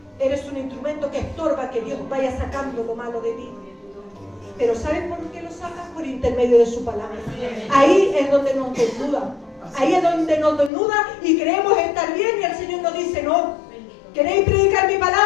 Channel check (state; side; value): drops out; right; at 10.7 s